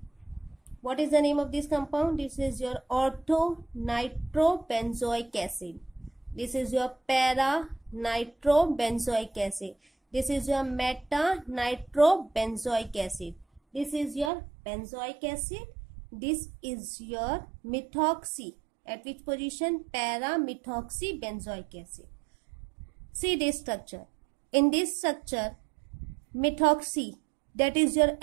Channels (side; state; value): left; drops out; at 14.3 s